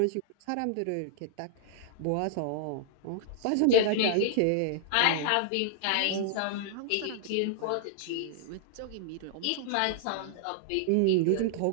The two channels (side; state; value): both; different; correlation -0.01